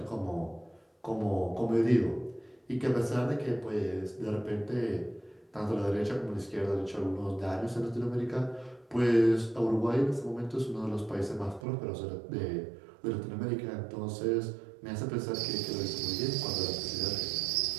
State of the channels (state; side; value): drops out; left; at 11.7 s